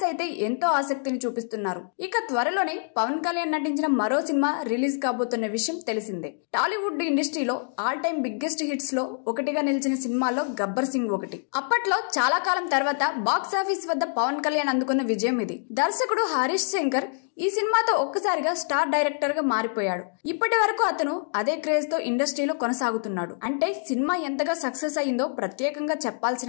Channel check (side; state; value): right; silent; digital silence